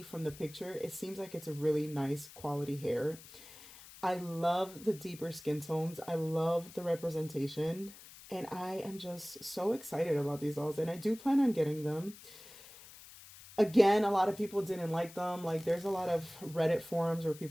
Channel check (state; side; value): noise; left; hiss, 18 dB below the sound